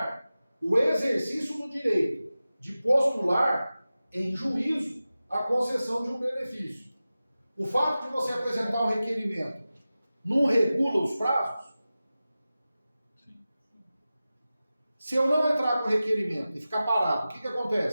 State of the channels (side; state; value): both; inverted; correlation -0.95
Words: o exercício do direito de postular em juízo a concessão de um benefício. O fato de você apresentar um requerimento não regula os prazos? Sim. Se eu não entrar com o requerimento e ficar parado, o que